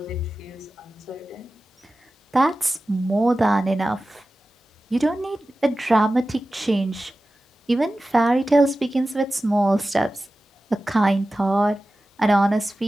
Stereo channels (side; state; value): both; normal; correlation 0.95